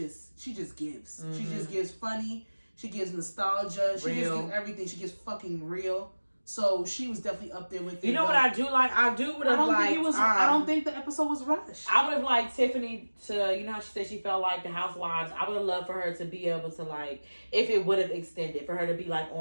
gives. She just gives funny. She gives nostalgia. She just gives everything. She gives fucking real. So she was definitely up there with it. You know what I do like? I don't think the episode was rushed. I would have liked Tiffany to, you know how she said she felt like the Housewives. I would have loved for her to be able to, like, if it would have extended, for her to be like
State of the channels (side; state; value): both; inverted; correlation -1.00